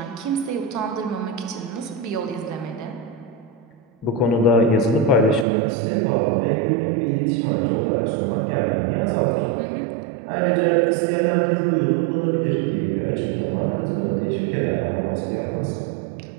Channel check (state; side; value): drops out; left; at 5.5 s